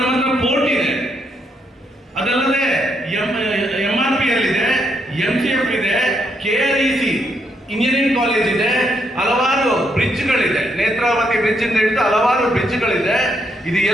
ಹತ್ರ ಪೋರ್ಟ್ ಇದೆ, ಅದಲ್ಲದೆ MRPL ಇದೆ, MCF ಇದೆ, KREC ಇಂಜಿನಿಯರಿಂಗ್ ಕಾಲೇಜ್ ಇದೆ, ಹಲವಾರು ಬ್ರಿಡ್ಜ್ಗಳಿದೆ, ನೇತ್ರಾವತಿ ಬ್ರಿಡ್ಜ್ ಇಂದ ಹಿಡಿದು ಹಲವಾರು ಬ್ರಿಡ್ಜ್ಗಳಿದೆ. ಇದು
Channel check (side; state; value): both; normal; correlation 0.77